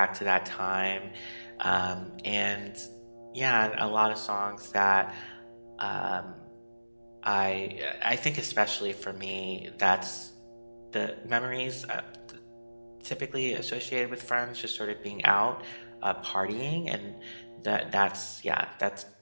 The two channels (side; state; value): both; inverted; correlation -1.00